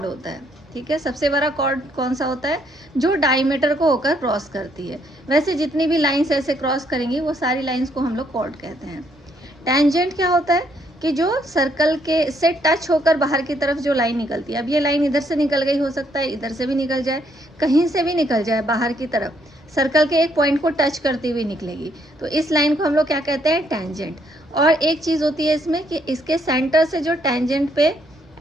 होता है, ठीक है। सबसे बड़ा कॉर्ड कौन सा होता है, जो डायमीटर को होकर क्रॉस करती है। वैसे जितनी भी लाइंस ऐसे क्रॉस करेंगी वो सारी लाइंस को हम लोग कॉर्ड कहते हैं। टेंजेंट क्या होता है, कि जो सर्कल के से टच होकर बाहर की तरफ जो लाइन निकलती है। अब ये लाइन इधर से निकल गई, हो सकता है इधर से भी निकल जाए, कहीं से भी निकल जाए बाहर की तरफ, सर्कल के एक पॉइंट को टच करती हुई निकलेगी, तो इस लाइन को हम लोग क्या कहते हैं, टेंजेंट। और एक चीज़ होती है इसमें कि इसके सेंटर से जो टेंजेंट पे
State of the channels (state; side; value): normal; both; correlation 0.71